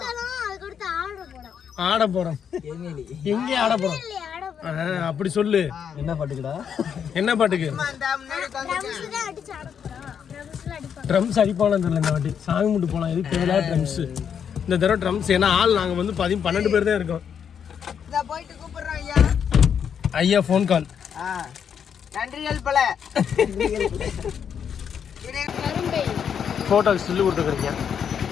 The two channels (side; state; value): right; quieter; 7.8 dB